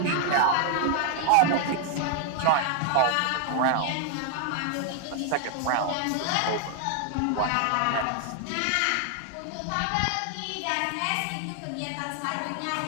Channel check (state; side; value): different; both; correlation 0.00